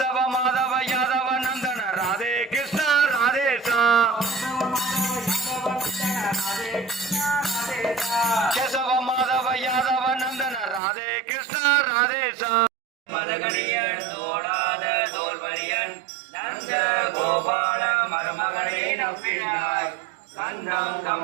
மாதவ யாதவ நந்தன ராதே கிருஷ்ண ராதேசா கேசவ மாதவ யாதவ நந்தன ராதே கிருஷ்ண ராதேசா மதகணியன் தோடாத தோல்வரியன் நந்த கோபால மருமகனை நம்பினாய் கண்ணம்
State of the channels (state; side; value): drops out; left; at 10.8 s